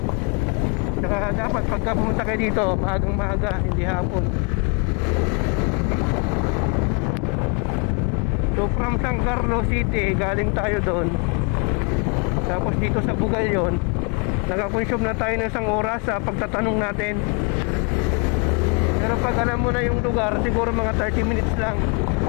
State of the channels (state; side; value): quieter; right; 35.8 dB